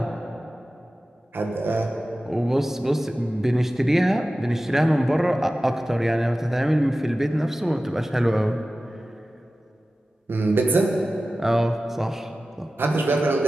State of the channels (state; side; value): normal; both; correlation 0.95